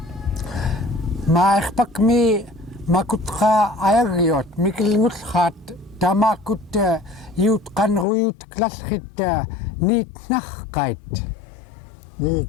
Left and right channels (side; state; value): right; drops out; at 8.1 s